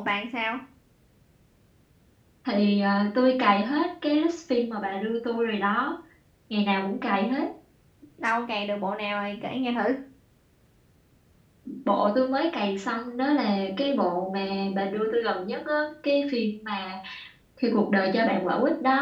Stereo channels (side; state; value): both; identical; correlation 1.00